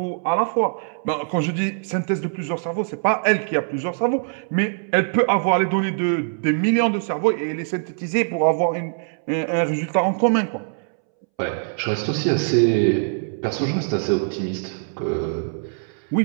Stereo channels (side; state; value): left; silent; 64 dB below the other